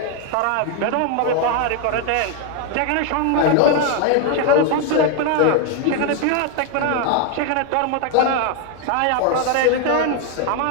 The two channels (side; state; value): both; different; correlation 0.01